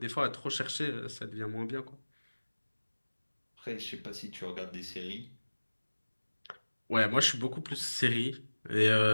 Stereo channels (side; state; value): both; inverted; correlation -1.00